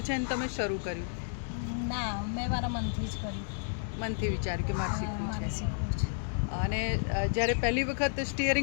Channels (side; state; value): right; silent; digital silence